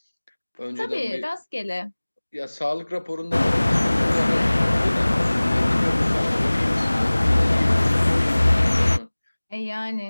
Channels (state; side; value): inverted; both; correlation -1.00